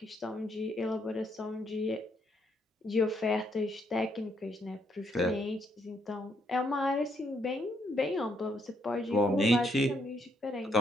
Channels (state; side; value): normal; both; correlation 0.74